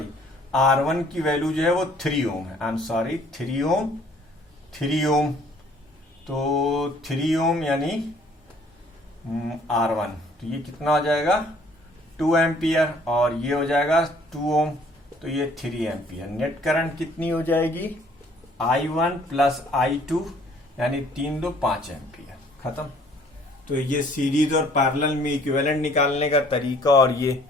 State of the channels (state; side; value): normal; both; correlation 0.58